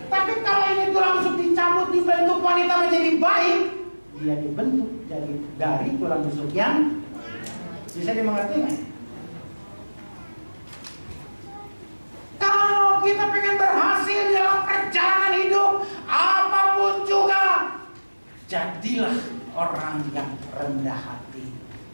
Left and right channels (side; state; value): both; inverted; correlation -1.00